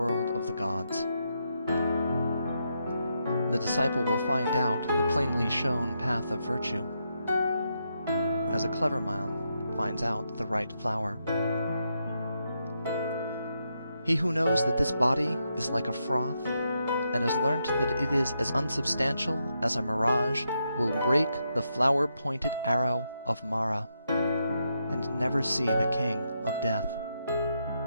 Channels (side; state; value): both; inverted; correlation -0.82